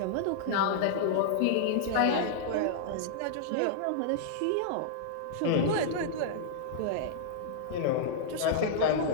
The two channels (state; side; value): different; both; correlation -0.02